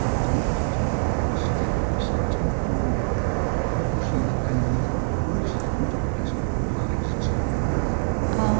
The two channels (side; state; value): left; silent; digital silence